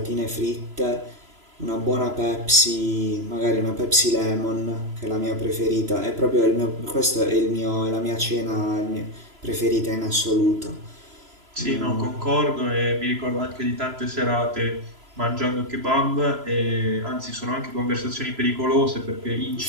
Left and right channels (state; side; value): late; left; 3.0 ms